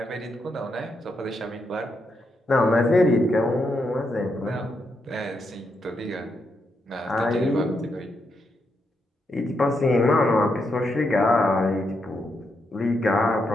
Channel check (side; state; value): both; normal; correlation 0.81